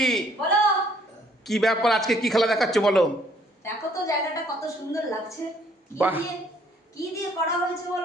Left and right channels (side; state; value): both; normal; correlation 0.63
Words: বলো কি ব্যাপার? আজকে কি খেলা দেখাচ্ছ বলো? দেখো তো জায়গাটা কত সুন্দর লাগছে। বাহ। কি দিয়ে করা হয়েছে